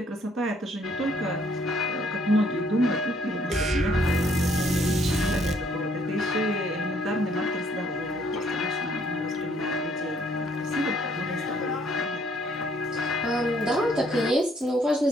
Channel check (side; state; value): both; normal; correlation 0.66